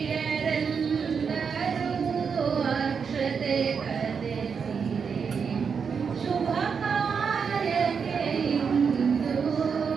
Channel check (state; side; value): quieter; left; 6.2 dB